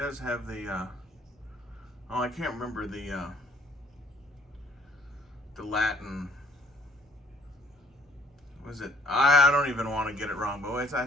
have the Oh, I can't remember the Latin. Was it? I don't even want to get it wrong, but I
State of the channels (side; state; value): both; normal; correlation 0.60